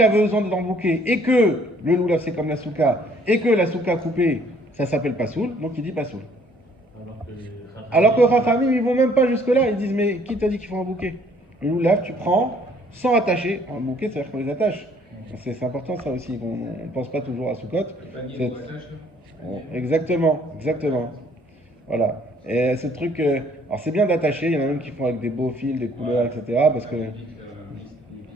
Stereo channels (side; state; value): both; normal; correlation 0.61